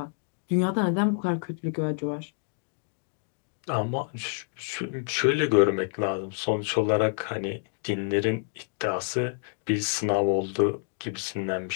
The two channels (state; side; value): silent; right; digital silence